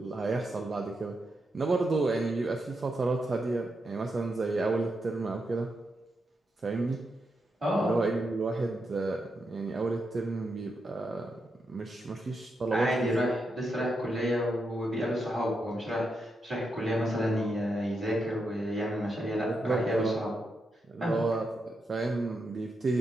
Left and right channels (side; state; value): both; normal; correlation 0.84